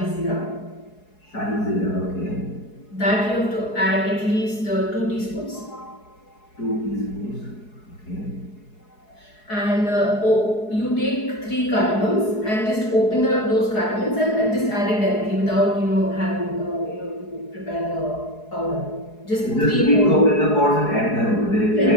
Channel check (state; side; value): late; right; 4.7 ms